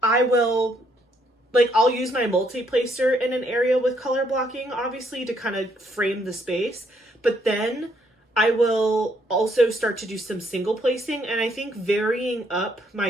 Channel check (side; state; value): both; normal; correlation 0.71